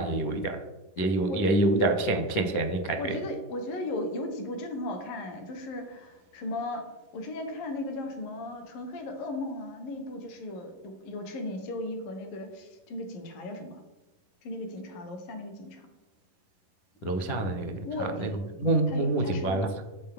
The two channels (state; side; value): late; right; 11 ms